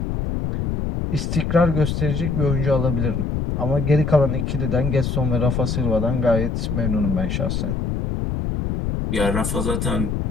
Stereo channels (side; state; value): left; noise; rumble, 1 dB below the sound